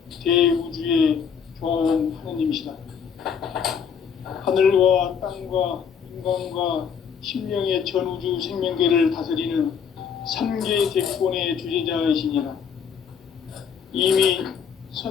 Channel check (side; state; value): right; quieter; 7.1 dB